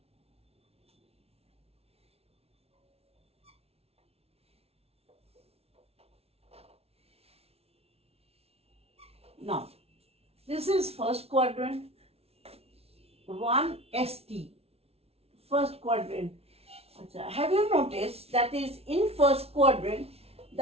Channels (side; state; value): left; late; 0.30 ms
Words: Now, this is first quadrant, 1ST, first quadrant. Have you noticed that is in first quadrant,